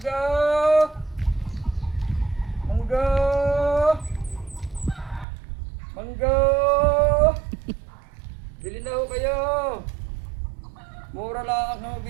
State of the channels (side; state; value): left; drops out; at 5.2 s